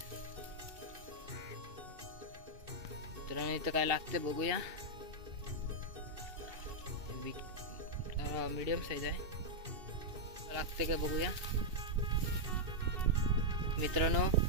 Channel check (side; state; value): left; late; 2.6 ms